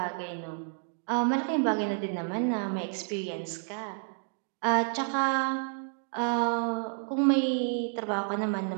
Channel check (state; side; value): silent; left; 58 dB below the other